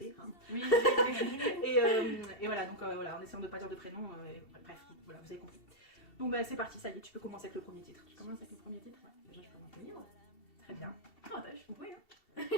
Hein. Oui. et voilà, donc voilà, en essayant de ne pas dire de prénom, bref, voilà, vous avez compris. Donc bah, c'est parti, ça y est, tu peux commencer avec le premier titre. Tu commences avec le premier titre? Ouais, déjà je peux m'en tenir. Très bien. Oh, bah, je suis compris, hein.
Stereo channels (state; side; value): late; right; 2.7 ms